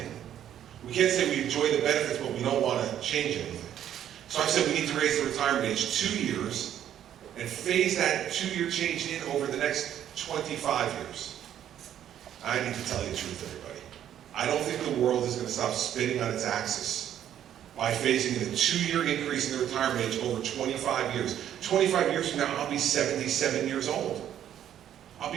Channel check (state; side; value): quieter; left; 10.6 dB